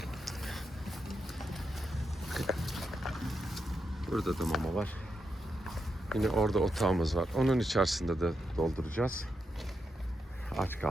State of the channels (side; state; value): both; normal; correlation 0.84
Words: Burada da mama var. Yine orada otağımız var. Onun içerisinde de dolduracağız. Aç